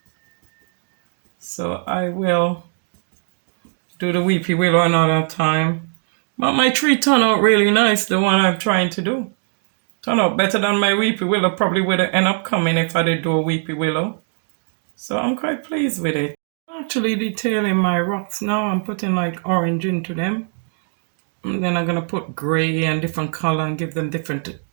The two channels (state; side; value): silent; left; 60 dB below the other